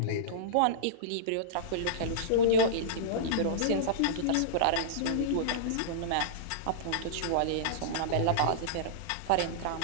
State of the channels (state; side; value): different; both; correlation -0.03